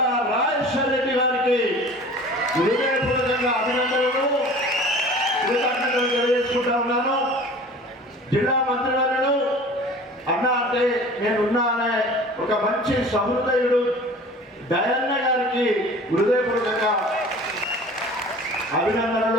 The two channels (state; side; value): normal; both; correlation 0.43